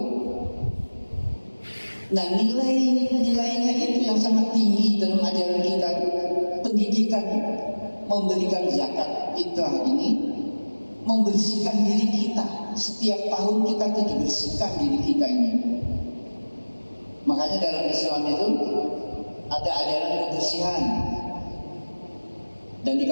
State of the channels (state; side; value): inverted; both; correlation -1.00